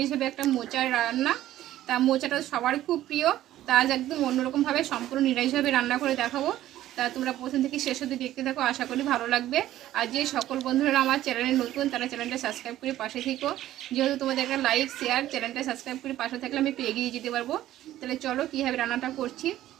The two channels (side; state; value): left; quieter; 13.6 dB